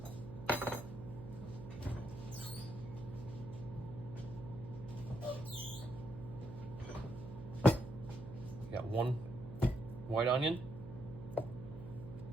Got 1 white onion,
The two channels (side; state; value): right; noise; hum, 11 dB below the sound